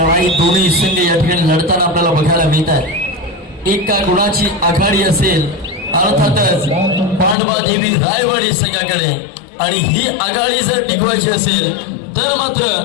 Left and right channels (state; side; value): drops out; right; at 7.4 s